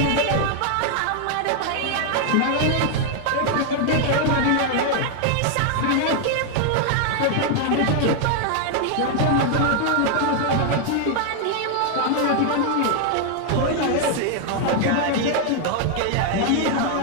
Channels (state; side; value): different; both; correlation 0.00